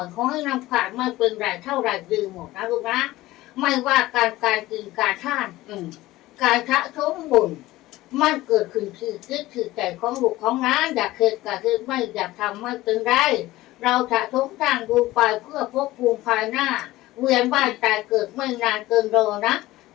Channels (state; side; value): quieter; right; 17.4 dB